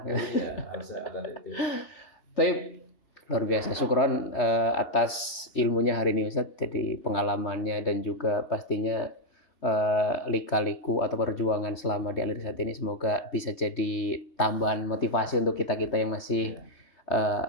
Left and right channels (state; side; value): late; right; 3.3 ms